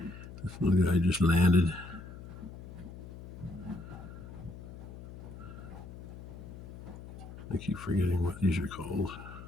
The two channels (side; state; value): left; noise; hum, 13 dB below the sound